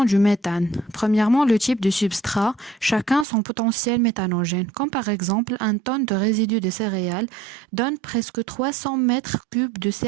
du méthane. Premièrement, le type de substrat, chacun son potentiel méthanogène, comme par exemple un tonne de résidus de céréales donne presque 300 mètres cubes de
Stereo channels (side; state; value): left; drops out; at 3.2 s